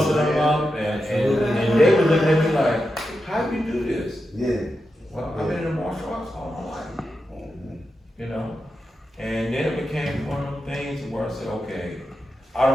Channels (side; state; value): both; normal; correlation 0.88